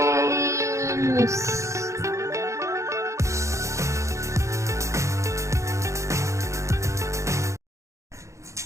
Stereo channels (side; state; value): left; late; 0.14 ms